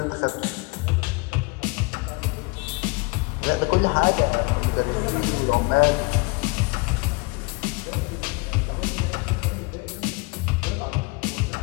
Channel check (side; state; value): right; quieter; 27.2 dB